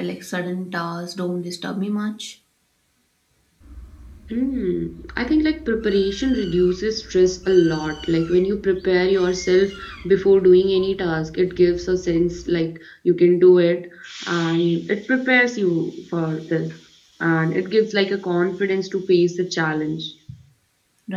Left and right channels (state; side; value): identical; both; correlation 1.00